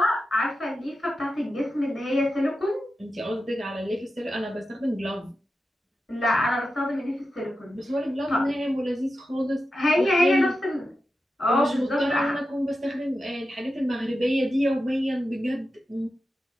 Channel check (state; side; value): normal; both; correlation 0.90